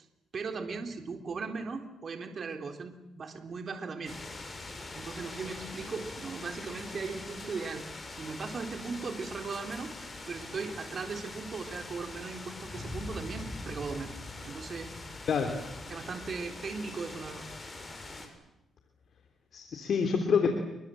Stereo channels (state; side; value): normal; both; correlation 0.77